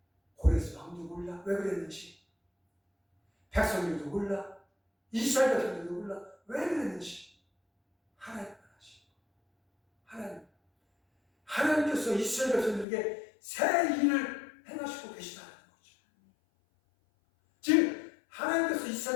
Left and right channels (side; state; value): right; drops out; at 12.9 s